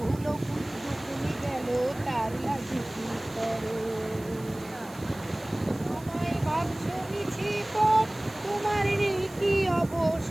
গেল তার লাগি কি করো। তোমায় ভাবছো মিছি পথ, তোমার নেই কি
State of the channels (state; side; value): noise; right; hiss, 21 dB below the sound